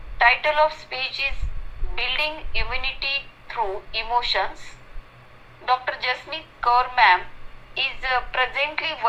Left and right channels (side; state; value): both; identical; correlation 1.00